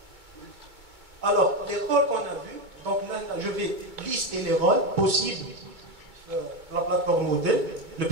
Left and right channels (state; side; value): late; left; 2.2 ms